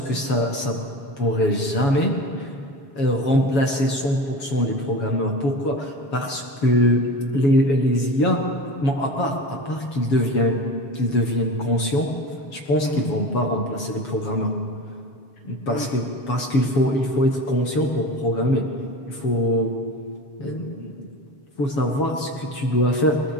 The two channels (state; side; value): late; right; 7.2 ms